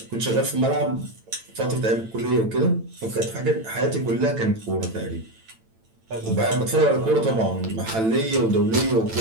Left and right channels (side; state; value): left; late; 9.0 ms